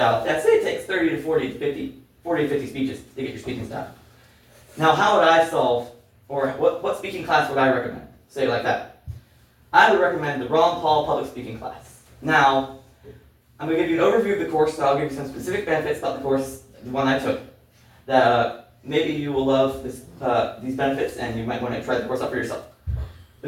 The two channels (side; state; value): both; identical; correlation 1.00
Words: I'd say it takes 30 to 40 to 50 speeches to get your speaking style. Now, how would I solve, or what speaking class would I recommend? Say it like that. I would recommend the Ron Paul public speaking class. Now, I'm going to give you an overview of the course, so I'll give you some specific benefits about the course, the one I took, that maybe you will love these benefits, and you might want to try the course out for yourself.